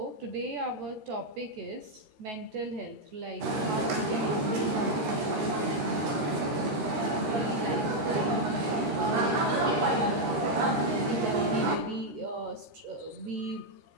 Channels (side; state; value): left; late; 13 ms